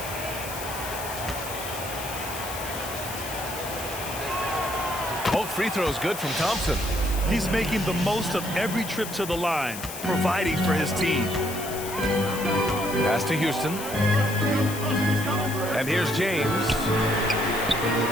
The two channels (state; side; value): noise; left; hiss, 9 dB below the sound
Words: Both free throws good from Thompson. He's making the most of every trip to the line, providing for his team. Pass to Houston. And here's James. And